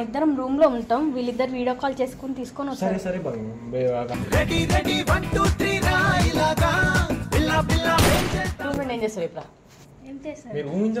ఇద్దరం రూమ్ లో ఉంటాం, వీళ్ళిద్దరు వీడియో కాల్ చేసుకుని తీసుకొని వస్తారు. ఏం చేస్తావు ఇప్పుడు?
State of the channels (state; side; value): identical; both; correlation 1.00